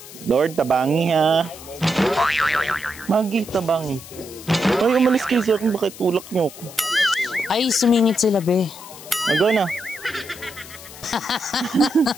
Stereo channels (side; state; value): left; noise; hiss, 16 dB below the sound